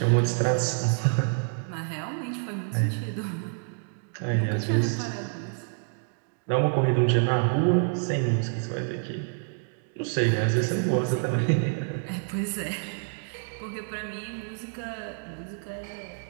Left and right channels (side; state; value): left; silent; 59 dB below the other